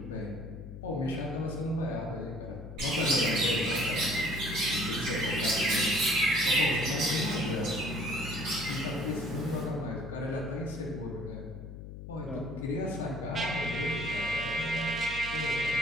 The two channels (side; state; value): left; noise; hum, 11 dB below the sound